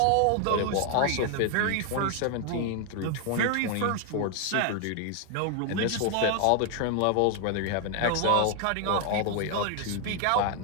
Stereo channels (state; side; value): different; both; correlation 0.00